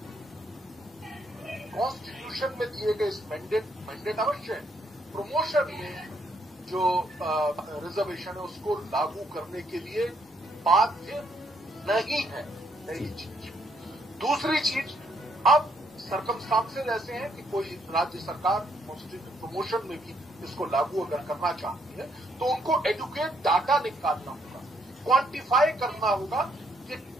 कॉन्स्टिट्यूशन में दिए गए इस मैंडेट अवश्य है, प्रमोशन में जो रिजर्वेशन है उसको लागू करने के लिए बाध्य नहीं है। पहली चीज। दूसरी चीज, अब सर्कमस्टांसेस ऐसे हैं कि कोई राज्य सरकार प्रमोशन में भी इसको लागू अगर करना चाहती है तो उनको एडुकेट डाटा निकालना होगा, क्वांटिफाई करना होगा कि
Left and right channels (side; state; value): both; normal; correlation 0.72